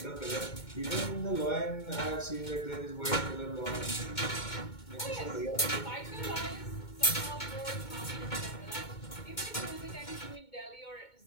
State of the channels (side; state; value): right; late; 2.2 ms